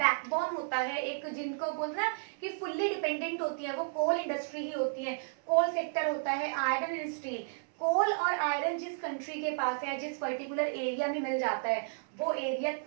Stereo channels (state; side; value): silent; left; 56 dB below the other